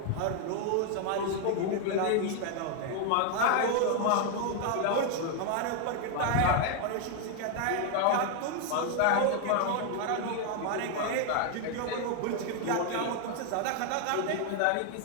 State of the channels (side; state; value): both; different; correlation 0.00